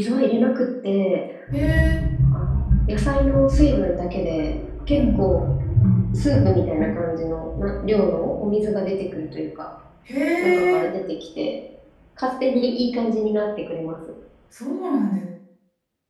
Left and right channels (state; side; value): identical; both; correlation 1.00